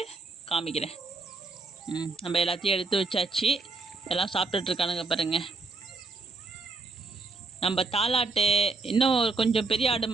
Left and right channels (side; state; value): left; quieter; 3.6 dB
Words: காமிக்கிறேன். நம்ம எல்லாத்தையும் எடுத்து வச்சாச்சு. எல்லாம் சாப்பிட்டுட்ருக்கானுங்க பாருங்கள். நம்ம தாலாட்டு இன்னும் கொஞ்சம் பெரிய ஆடு